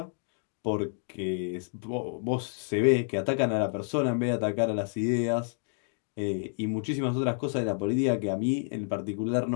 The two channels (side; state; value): right; silent; 58 dB below the other